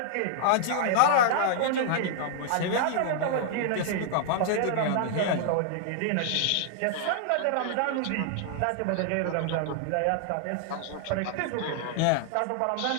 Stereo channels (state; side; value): different; both; correlation -0.01